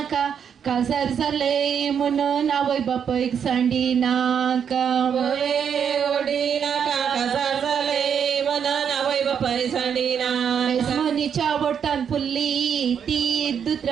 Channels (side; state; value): left; quieter; 7.7 dB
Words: काजार जाले म्हणून आवय बापयक सांडी नाका ओडी नाका काजार जाले म्हणून आवय बापाय सांडी ना मनीच्या वटान फुल्ली ती